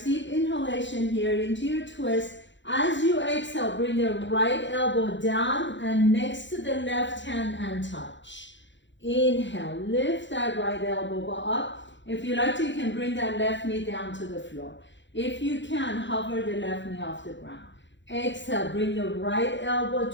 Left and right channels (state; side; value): late; right; 0.54 ms